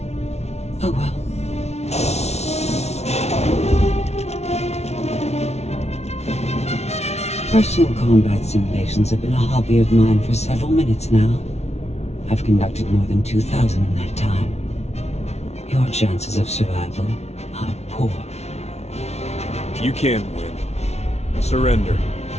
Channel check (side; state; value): right; late; 0.31 ms